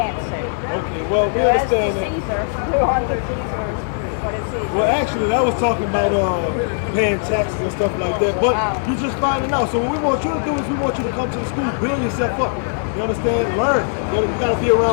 Okay, well, we understand that. Well, actually, I was talking about paying taxes and stuff like that, but you're just finding out. So what we want you to do is we want you to come to the school, build yourself up. You understand? Learn. You got to be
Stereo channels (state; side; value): silent; right; digital silence